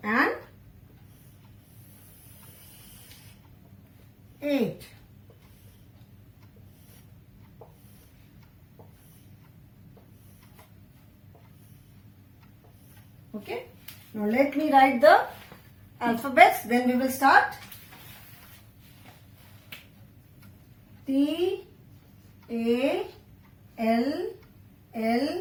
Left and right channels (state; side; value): identical; both; correlation 1.00